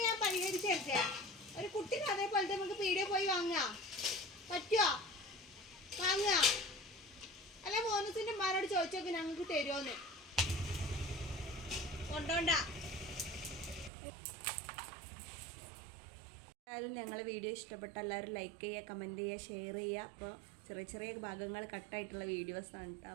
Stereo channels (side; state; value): left; drops out; at 13.9 s